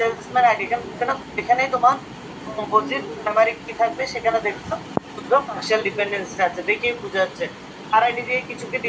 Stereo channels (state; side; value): identical; both; correlation 1.00